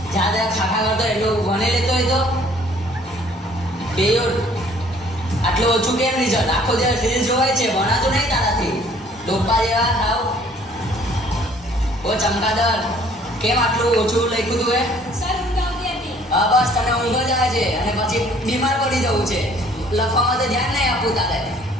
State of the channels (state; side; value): normal; both; correlation 0.58